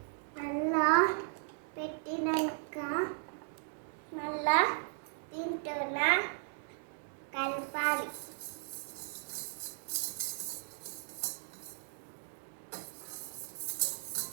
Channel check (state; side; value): silent; left; digital silence